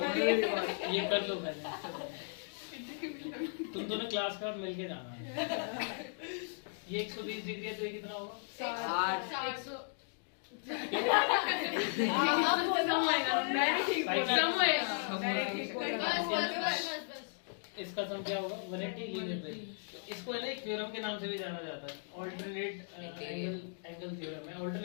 ये कर लो पहले, तुम दोनों क्लास का मिलके जाना है। ये 120 डिग्री है तो ये कितना होगा? 60। 100 इसका सम क्या होगा? 180 लीनियर पे। इसको है ना एक थ्योरम के नाम से भी जाना जाता है, ऑल्टरनेट एंगल थ्योरम है।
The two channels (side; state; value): right; silent; digital silence